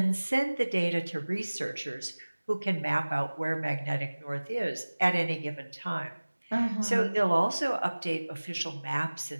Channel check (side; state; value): both; inverted; correlation -1.00